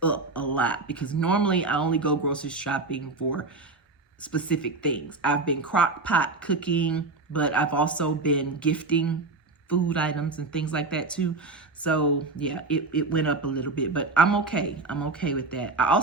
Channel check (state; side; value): quieter; left; 3.6 dB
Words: up a lot, because normally I only go grocery shopping for specific things. I've been crock pot cooking, but I've also been gifting food items and things like that too. So yeah, it went up a little bit, but I'm okay. I'm okay with that. I